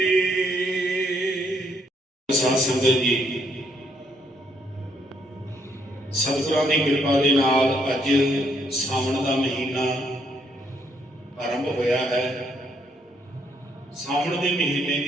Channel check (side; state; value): both; normal; correlation 0.71